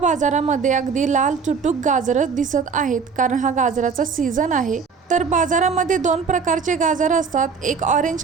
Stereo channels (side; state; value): left; quieter; 5.6 dB